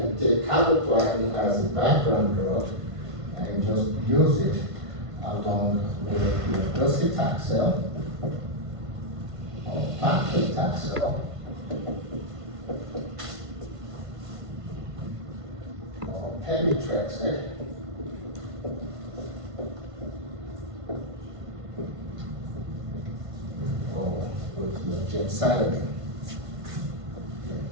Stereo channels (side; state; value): left; late; 1.5 ms